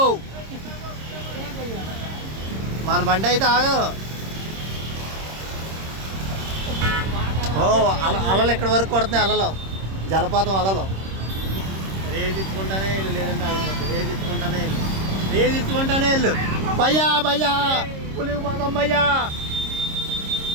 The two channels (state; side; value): late; left; 26 ms